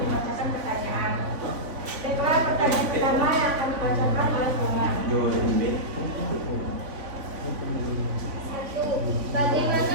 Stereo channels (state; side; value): late; left; 3.5 ms